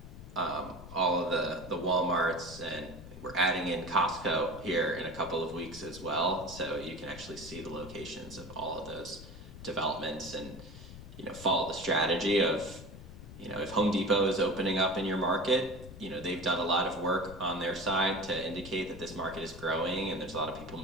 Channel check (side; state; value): left; noise; rumble, 14 dB below the sound